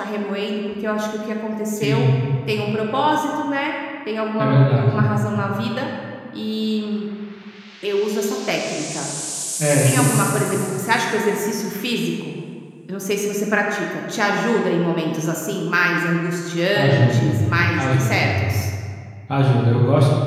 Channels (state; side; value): identical; both; correlation 1.00